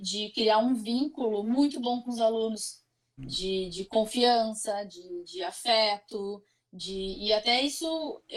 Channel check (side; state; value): both; identical; correlation 1.00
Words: criar um vínculo muito bom com os alunos, de confiança, de afeto, e até isso